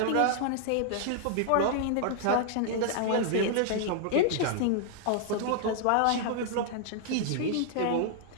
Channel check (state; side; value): different; both; correlation 0.00